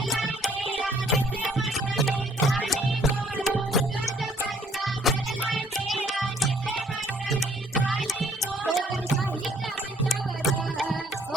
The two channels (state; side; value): normal; both; correlation 0.63